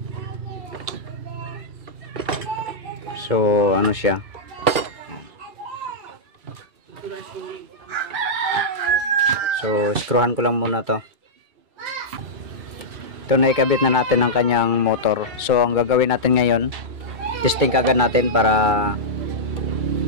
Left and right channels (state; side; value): late; left; 2.3 ms